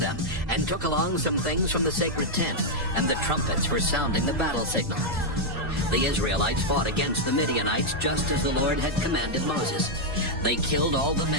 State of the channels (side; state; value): both; normal; correlation -0.03